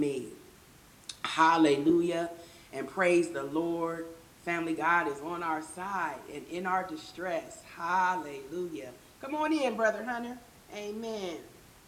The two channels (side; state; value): both; identical; correlation 1.00